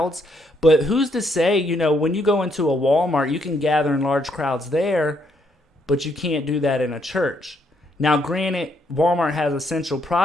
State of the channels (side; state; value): both; normal; correlation 0.73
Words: but who's to say, when you go into a Walmart, you can gather in large crowds there, but you can't do that in a church. Now, granted, Walmart has essential